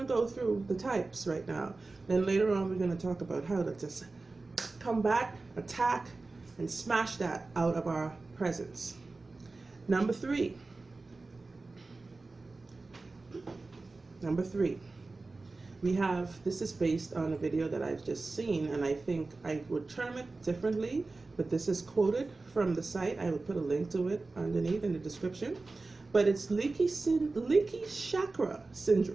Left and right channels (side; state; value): left; quieter; 3.5 dB